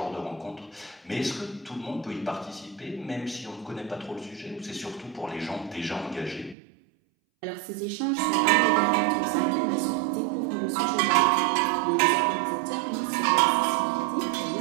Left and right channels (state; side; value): drops out; left; at 6.6 s